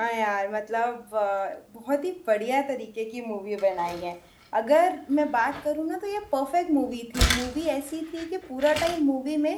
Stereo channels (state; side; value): identical; both; correlation 1.00